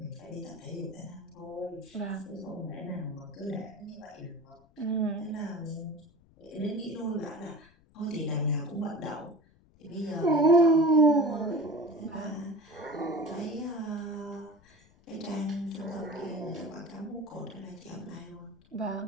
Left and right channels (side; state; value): left; noise; rumble, 29 dB below the sound